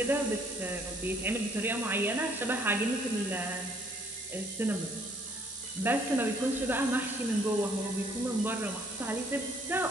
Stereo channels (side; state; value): both; normal; correlation 0.63